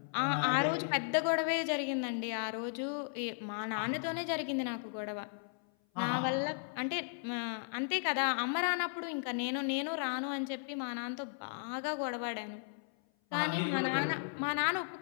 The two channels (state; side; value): silent; right; 54 dB below the other